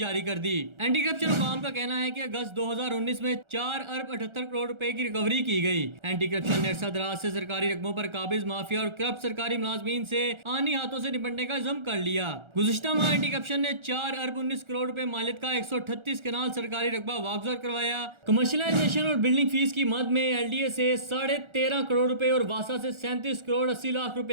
कर दी। एंटी करप्शन हुकाम का कहना है कि अगस्त 2019 में 4 अरब 78 करोड़ रुपए की रिकवरी की गई। एंटी करप्शन ने अरसा दराज से सरकारी रकबों पर काबिज माफिया और करप्ट सरकारी मुलाजमीन से आनी हाथों से निपटने का इल्जाम कर लिया। गुज़िश्ता माह एंटी करप्शन ने 4 अरब 19 करोड़ रुपए मालियत का 138 कनाल सरकारी रकबा वागुजार करवाया। कमर्शलाइजेशन और बिल्डिंग फीस की मद में एलडीए से 13.5 करोड़ रुपए और वासा से 37 करोड़ 80 लाख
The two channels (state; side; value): late; left; 1.4 ms